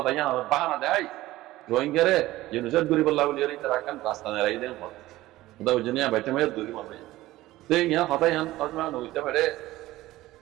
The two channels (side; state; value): left; quieter; 16.8 dB